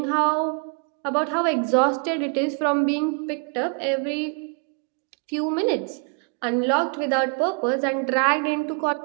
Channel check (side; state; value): left; quieter; 37.1 dB